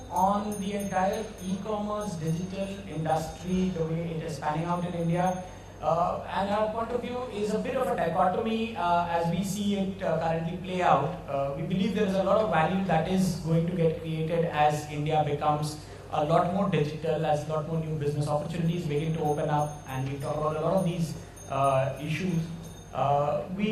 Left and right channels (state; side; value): identical; both; correlation 1.00